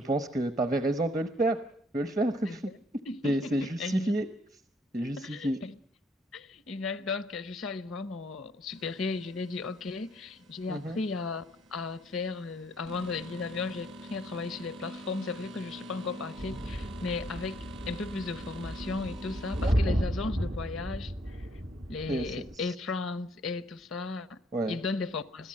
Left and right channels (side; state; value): both; normal; correlation 0.66